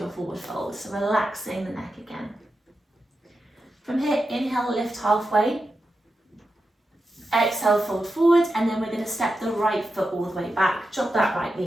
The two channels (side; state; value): both; normal; correlation 0.89